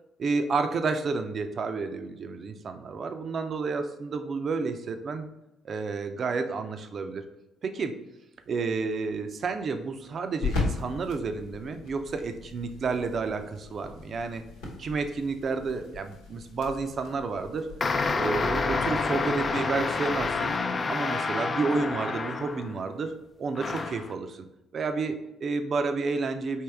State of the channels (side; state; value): both; normal; correlation 0.79